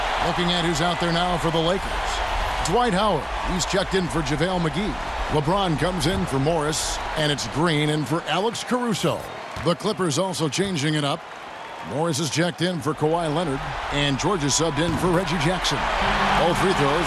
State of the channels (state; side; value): identical; both; correlation 1.00